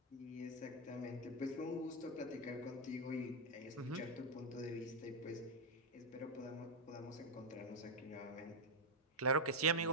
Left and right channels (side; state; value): both; normal; correlation 0.00